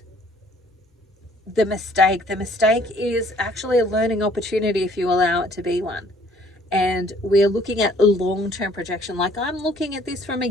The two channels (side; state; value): both; normal; correlation 0.58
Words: the mistake. The mistake is actually a learning opportunity if you allow it to be one. And we're looking at a long-term projection. Like, I'm looking at this from a